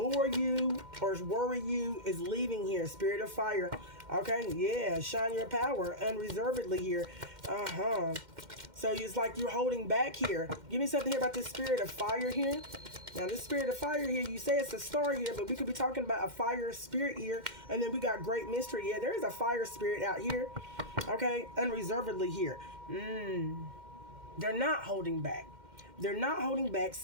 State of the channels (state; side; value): late; left; 2.1 ms